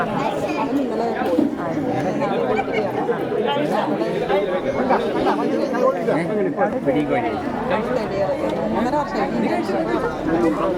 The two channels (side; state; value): both; identical; correlation 1.00